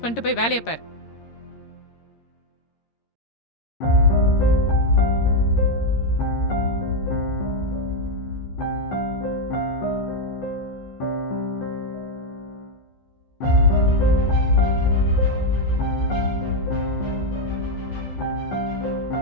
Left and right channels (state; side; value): late; right; 13 ms